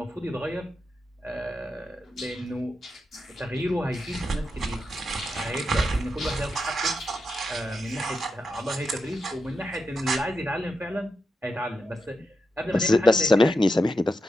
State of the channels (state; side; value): normal; both; correlation 0.86